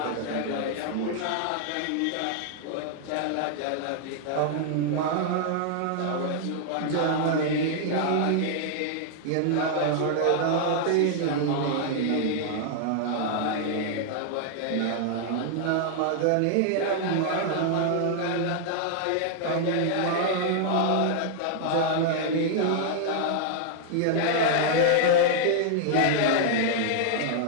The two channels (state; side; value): different; both; correlation -0.01